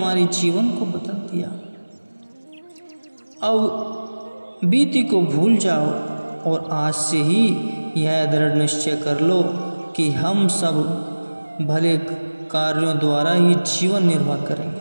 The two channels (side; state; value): both; inverted; correlation -1.00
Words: जीवन को बदल दिया। अब बीती को भूल जाओ और आज से ही यह दृढ़ निश्चय कर लो कि हम सब भले कार्यों द्वारा ही जीवन निर्वाह